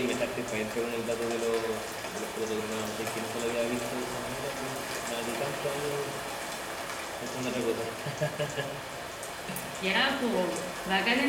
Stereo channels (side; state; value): both; identical; correlation 1.00